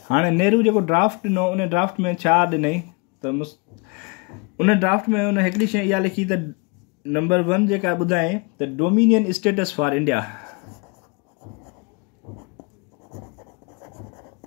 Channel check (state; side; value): quieter; right; 30.1 dB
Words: हाणे नेहरू जेको ड्राफ्ट ॾिनो, उन ड्राफ्ट में छा ॾिनई त उन ड्राफ्ट में उन हिकिड़ी शइ इहा लिखी त नंबर 1 जेका ॿुधायईं त dominion status for India,